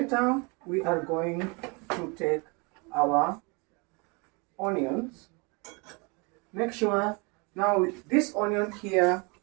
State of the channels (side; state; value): left; quieter; 30.4 dB